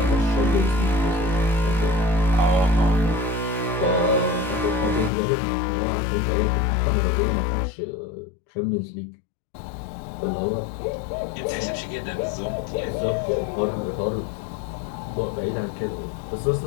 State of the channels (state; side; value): drops out; right; at 5.1 s